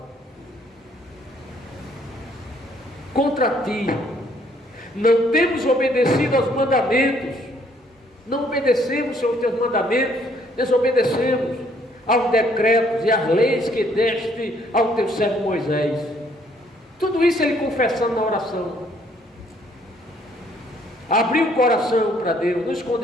contra ti. Não temos obedecido aos mandamentos. Não obedecemos, Senhor, os teus mandamentos. Desobedecemos aos decretos e às leis que deste ao teu servo Moisés. Tudo isso ele confessando na oração. Abriu o coração para Deus, não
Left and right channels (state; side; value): normal; both; correlation 0.65